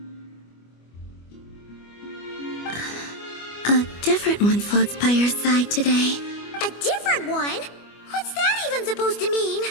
A different one floats by your side today. A different one? What's that even supposed to mean?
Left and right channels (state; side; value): late; right; 25 ms